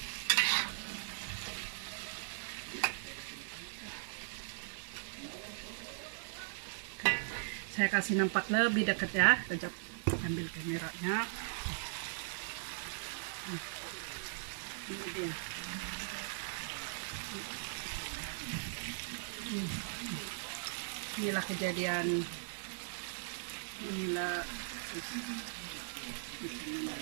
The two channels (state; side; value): silent; left; digital silence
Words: Saya kasih nampak lebih dekat ya. Kejap ambil kameranya. Ini dia. Inilah kejadian. Inilah ya,